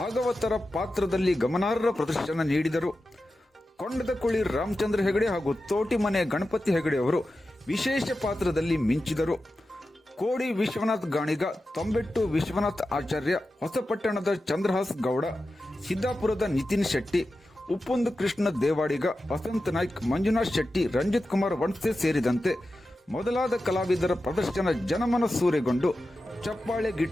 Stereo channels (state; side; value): normal; both; correlation 0.92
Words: ಪಾತ್ರದಲ್ಲಿ ಗಮನಾರ್ಹ ಪ್ರದರ್ಶನ ನೀಡಿದರು. ಕೊಂಡದಕುಳಿ ರಾಮಚಂದ್ರ ಹೆಗಡೆ ಹಾಗೂ ತೋಟಿಮನೆ ಗಣಪತಿ ಹೆಗಡೆ ಅವರು ವಿಶೇಷ ಪಾತ್ರದಲ್ಲಿ ಮಿಂಚಿದರು. ಕೋಡಿ ವಿಶ್ವನಾಥ್ ಗಾಣಿಗ, ತೊಂಬೆಟ್ಟು ವಿಶ್ವನಾಥ್ ಆಚಾರ್ಯ, ಹೊಸಪಟ್ಟಣದ ಚಂದ್ರಹಾಸ್ ಗೌಡ, ಸಿದ್ದಾಪುರದ ನಿತಿನ್ ಶೆಟ್ಟಿ, ಉಪ್ಪುಂದು ಕೃಷ್ಣ ದೇವಾಡಿಗ, ವಸಂತ ನಾಯ್ಕ್, ಮಂಜುನಾಥ್ ಶೆಟ್ಟಿ, ರಂಜಿತ್ ಕುಮಾರ್ ವಣ್ಸೆ ಸೇರಿದಂತೆ ಮೊದಲಾದ ಕಲಾವಿದರ ಪ್ರದರ್ಶನ ಜನಮನ ಸೂರೆಗೊಂಡು ಚಪ್ಪಾಳೆ